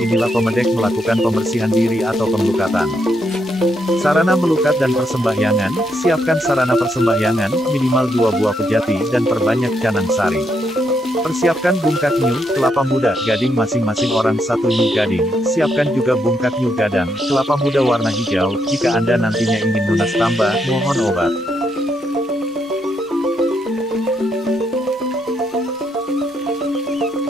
pemedek melakukan pembersihan diri atau pemlukatan. Sarana melukat dan persembahyangan, siapkan sarana persembahyangan, minimal 2 buah pejati dan perbanyak canang sari. Persiapkan bungkak nyu, kelapa muda, gading masing-masing orang 1 nyu gading, siapkan juga bungkak nyu gadang, kelapa muda warna hijau, jika Anda nantinya ingin lunas tambah, mohon obat.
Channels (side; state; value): both; normal; correlation 0.78